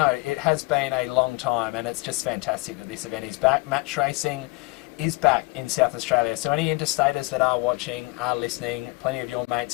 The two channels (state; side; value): quieter; right; 25.2 dB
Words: it has been a long time, and it's just fantastic that this event is back. Match racing is back in South Australia. So any interstaters that are watching, are listening, plenty of your